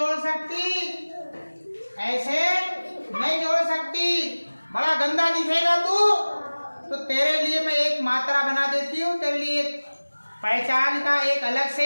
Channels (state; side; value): inverted; both; correlation -1.00